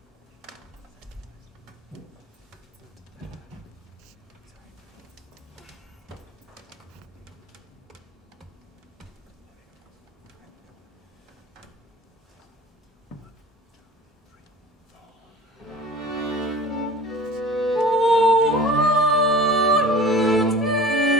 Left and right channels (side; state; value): both; normal; correlation 0.42